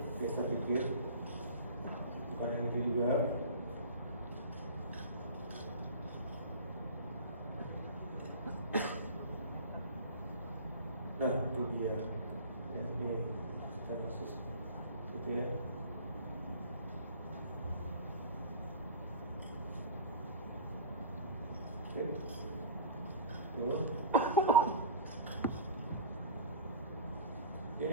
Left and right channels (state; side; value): inverted; both; correlation -0.37